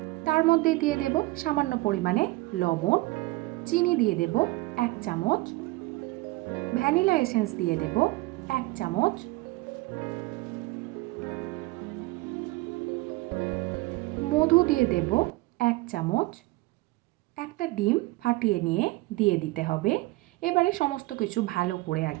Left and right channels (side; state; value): left; quieter; 21.4 dB